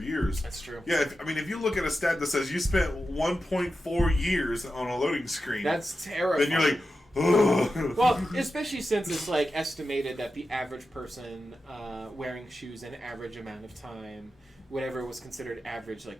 That's true. Yeah, if you look at a stat that says you spent 1.4 years on a loading screen, that's terrifying. Then you're like, ugh. Well, especially since it's estimated that the average person wearing shoes an average amount of time, whatever was considered average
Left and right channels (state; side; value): normal; both; correlation 0.91